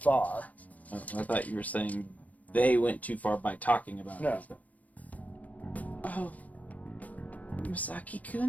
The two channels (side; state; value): right; late; 0.072 ms